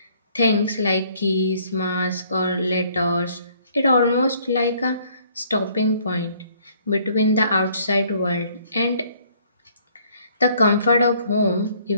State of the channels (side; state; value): both; inverted; correlation -0.62